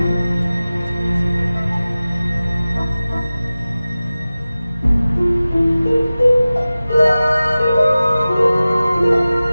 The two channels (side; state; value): both; inverted; correlation -0.97